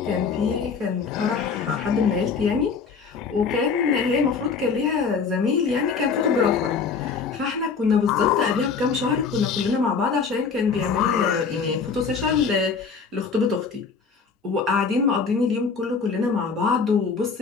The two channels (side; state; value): right; quieter; 5.4 dB